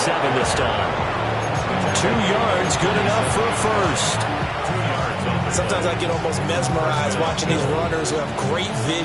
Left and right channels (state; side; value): identical; both; correlation 1.00